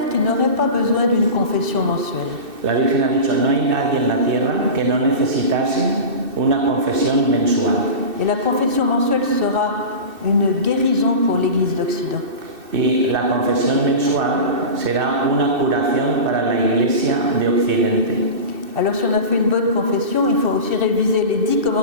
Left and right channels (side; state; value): left; late; 2.6 ms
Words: qui n'aurait pas besoin d'une confession mensuelle. La Virgen ha dicho, no hay nadie en la tierra que no necesitase una confesión mensual. Et la confession mensuelle sera une guérison pour l'Église d'Occident. Y la confesión mensual será una curación para la Iglesia de Occidente. Alors si on a fait une bonne confession, il faut aussi réviser les 10